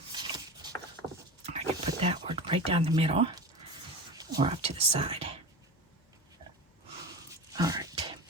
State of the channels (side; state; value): both; normal; correlation 0.29